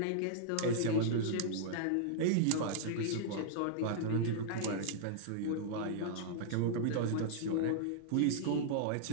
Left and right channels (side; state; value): both; different; correlation -0.02